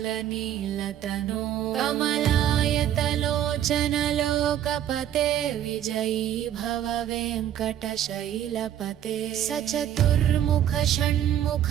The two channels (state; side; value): quieter; left; 10.9 dB